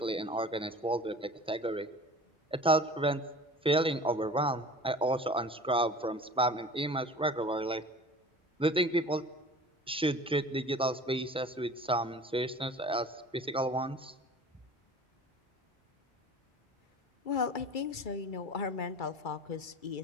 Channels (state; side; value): normal; both; correlation 0.41